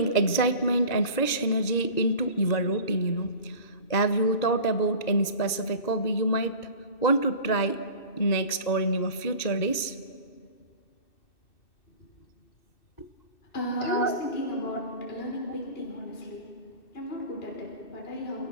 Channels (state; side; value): late; right; 2.6 ms